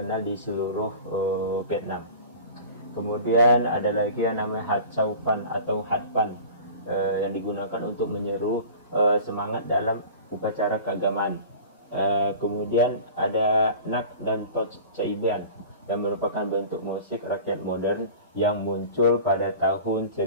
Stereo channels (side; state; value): both; inverted; correlation -0.40